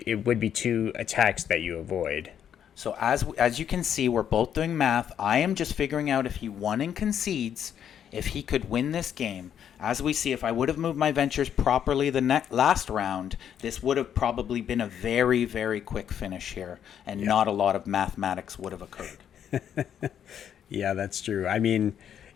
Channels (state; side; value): quieter; right; 9.2 dB